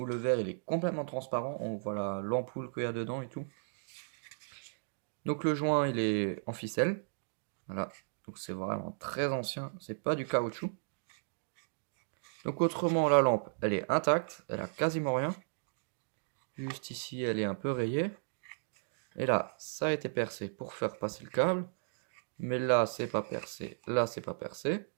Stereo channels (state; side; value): silent; left; digital silence